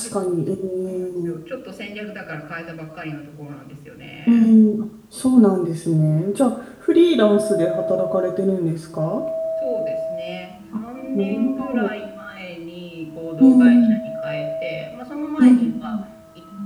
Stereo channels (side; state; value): both; identical; correlation 1.00